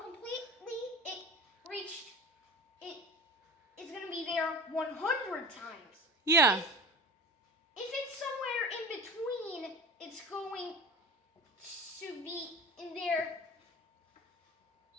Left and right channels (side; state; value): both; normal; correlation 0.35